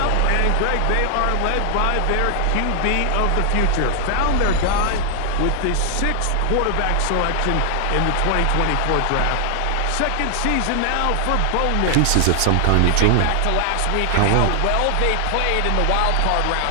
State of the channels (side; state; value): both; different; correlation 0.00